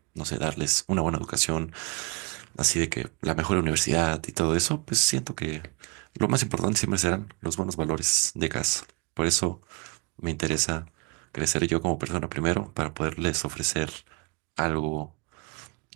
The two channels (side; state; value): left; quieter; 31.6 dB